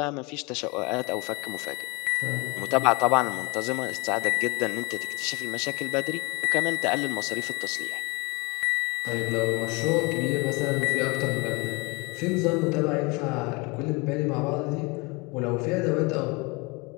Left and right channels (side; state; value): right; quieter; 27.4 dB